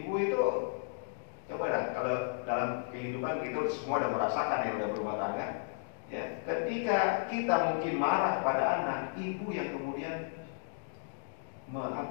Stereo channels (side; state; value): right; silent; digital silence